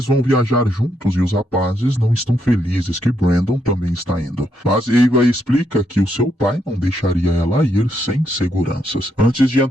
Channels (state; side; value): normal; both; correlation 0.77